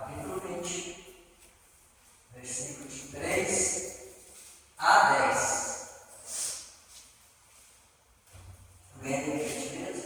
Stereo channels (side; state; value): both; identical; correlation 1.00